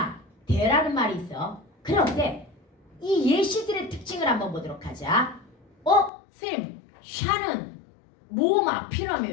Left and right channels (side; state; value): right; drops out; at 6.1 s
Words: 대라는 말이 있어. 그런데 이 예시들의 특징을 한번 보도록 하자. 쌤 샤는 모음